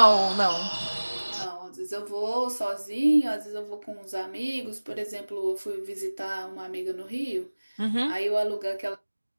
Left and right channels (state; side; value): inverted; both; correlation -1.00